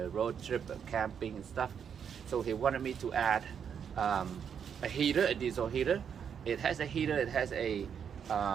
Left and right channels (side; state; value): left; quieter; 7.6 dB